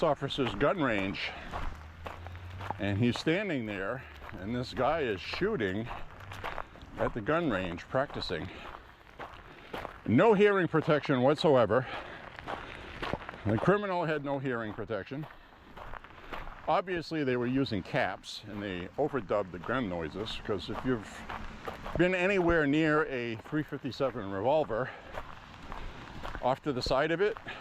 officer's gun range, and he's standing there, and this guy is shooting at the gun range, practicing. No hearing protection whatsoever. The criminal had no hearing protection. Obviously they were using caps, and they overdubbed the gun noises, because if you've been anywhere near a .357 revolver, off to the side of it,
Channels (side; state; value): both; identical; correlation 1.00